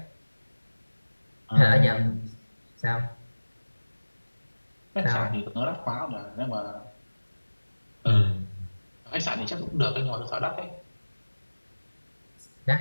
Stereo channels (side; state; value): both; inverted; correlation -1.00